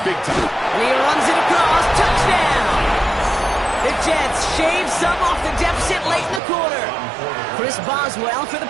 big time. And he runs it across. Touchdown! The Jets shave some off the deficit late in the quarter. Chris Boswell for the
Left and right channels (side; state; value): left; drops out; at 6.4 s